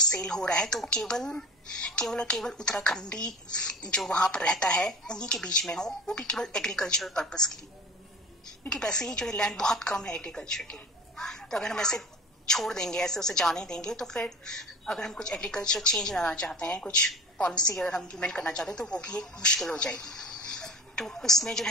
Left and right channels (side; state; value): both; normal; correlation 0.37